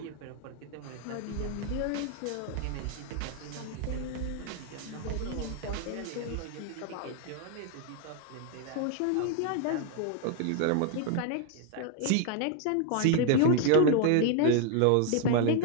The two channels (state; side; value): different; both; correlation 0.01